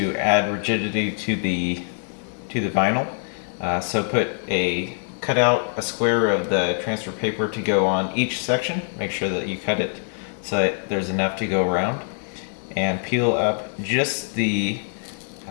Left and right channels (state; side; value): silent; right; 57 dB below the other